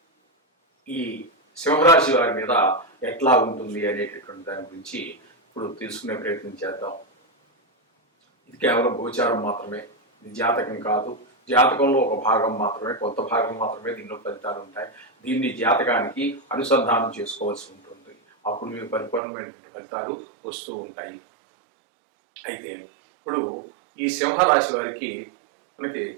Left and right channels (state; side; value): drops out; left; at 19.2 s